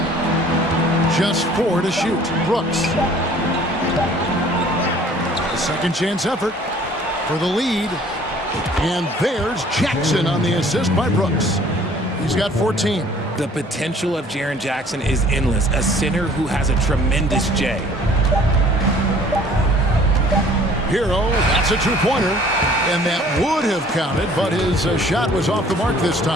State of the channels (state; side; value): normal; both; correlation 0.54